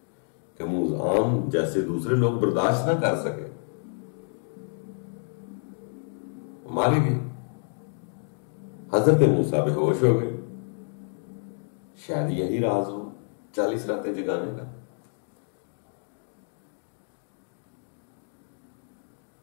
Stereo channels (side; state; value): right; silent; 57 dB below the other